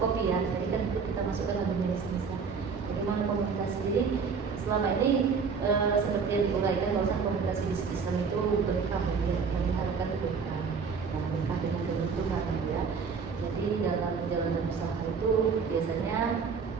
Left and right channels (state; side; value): quieter; left; 5.6 dB